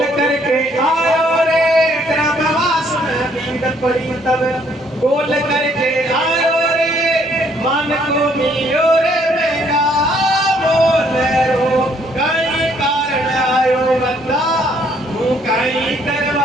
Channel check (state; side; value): normal; both; correlation 0.66